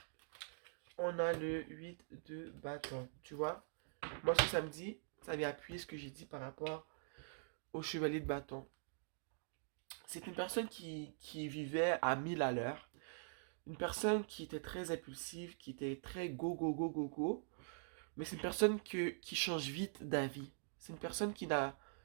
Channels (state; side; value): silent; left; digital silence